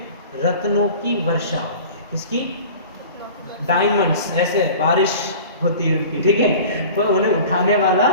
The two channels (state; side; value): inverted; both; correlation -0.41